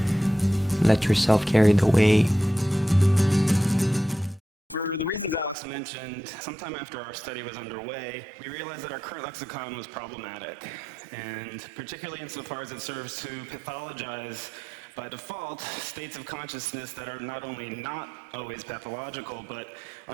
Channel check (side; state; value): left; drops out; at 5.6 s